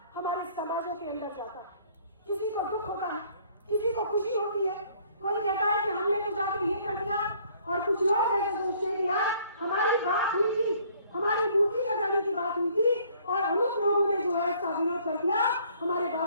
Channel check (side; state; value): both; inverted; correlation -0.60